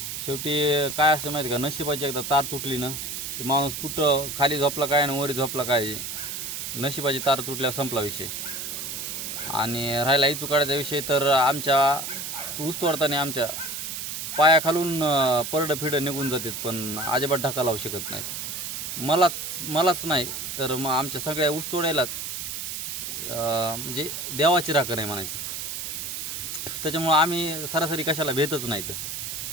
शेवटी काय असं माहिती का, नशिबाची एकदा तार तुटली ना की माणूस कुठं खाली झोपला काय आणि वरी झोपला काय, नशिबाची तार तुटल्यावर संपला विषय. आणि राहिला इचू काढायचा विषय तर आमच्या ऊस तोडताना आमच्या पायाखालून परडं फिडं निघून जातात, पण अजिबात ढका लावू शकत नाहीत. मलाच नाही तर मग आमच्या सगळ्या ऊस तोडायलाच म्हणजे देवाची राखण आहे म्हणायची. त्याच्यामुळं आम्ही सरासरी कशाला भेटच नाहीत.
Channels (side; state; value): right; noise; hiss, 5 dB below the sound